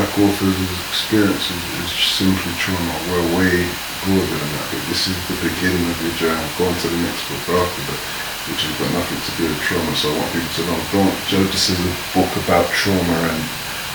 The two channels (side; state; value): both; identical; correlation 1.00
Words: authors' experiences is simply trauma. We're way broader than that, but this is the beginning of your journey. Go on to the next book after that, which has got nothing to do with trauma, so I want people to know, don't judge this as a book about trauma and